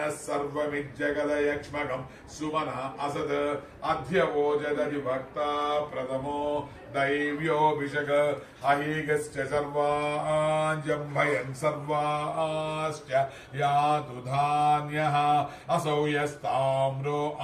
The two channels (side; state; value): both; identical; correlation 1.00